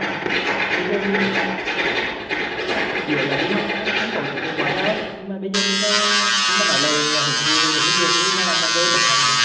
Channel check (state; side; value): identical; both; correlation 1.00